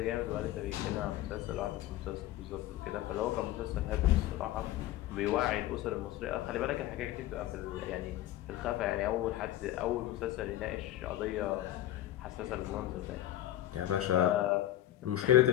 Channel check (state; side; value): quieter; right; 13.8 dB